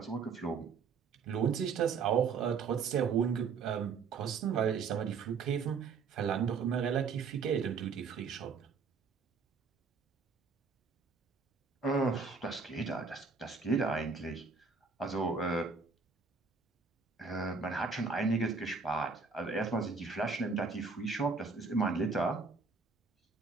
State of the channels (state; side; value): quieter; left; 5.0 dB